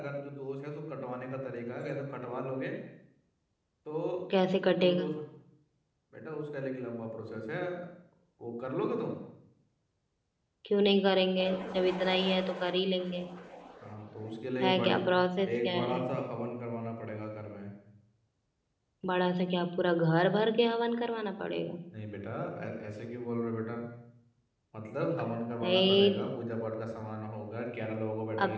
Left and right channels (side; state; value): both; identical; correlation 1.00